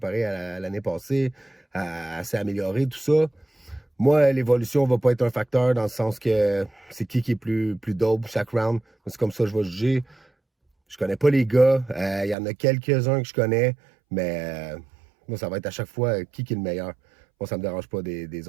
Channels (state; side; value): drops out; left; at 12.4 s